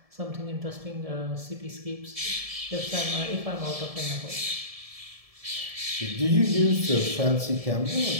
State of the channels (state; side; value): late; left; 1.7 ms